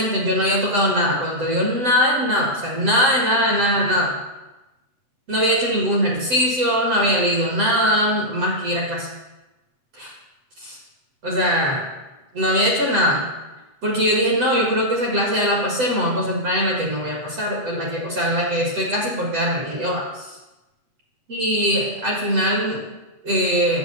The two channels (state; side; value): late; left; 8.0 ms